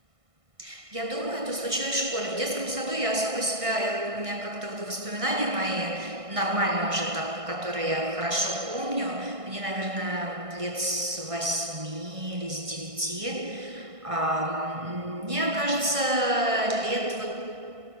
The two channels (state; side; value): late; left; 1.6 ms